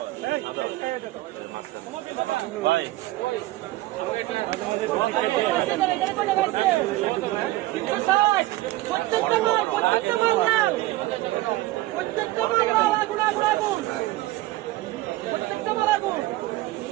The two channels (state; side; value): quieter; left; 17.7 dB